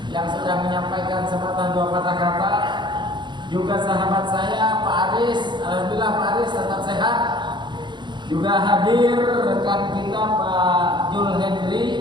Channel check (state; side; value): late; left; 0.22 ms